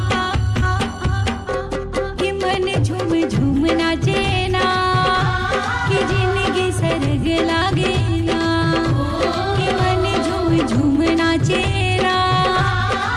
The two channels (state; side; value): identical; both; correlation 1.00